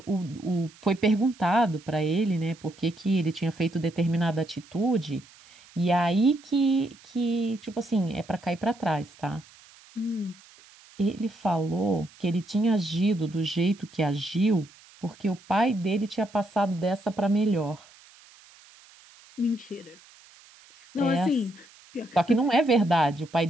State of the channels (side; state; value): right; noise; hiss, 25 dB below the sound